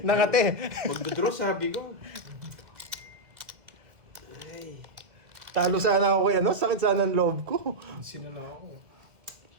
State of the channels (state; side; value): late; left; 2.0 ms